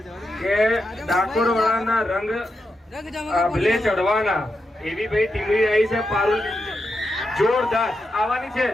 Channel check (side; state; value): both; normal; correlation 0.86